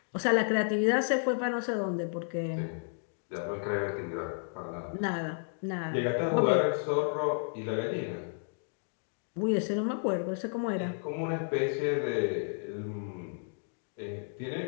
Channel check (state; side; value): silent; right; digital silence